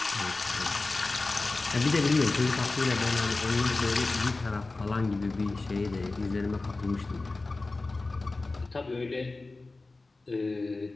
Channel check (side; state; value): right; quieter; 3.4 dB